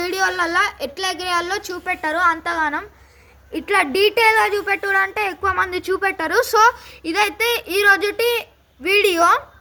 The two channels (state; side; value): identical; both; correlation 1.00